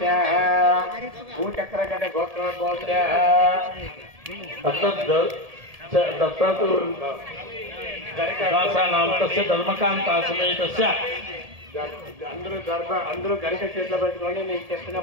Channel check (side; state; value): left; late; 1.7 ms